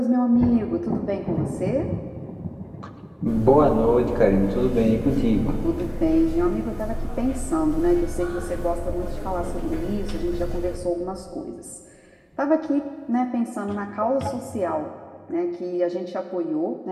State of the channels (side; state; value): both; identical; correlation 1.00